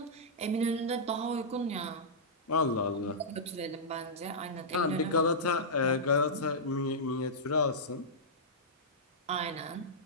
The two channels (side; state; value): both; normal; correlation -0.13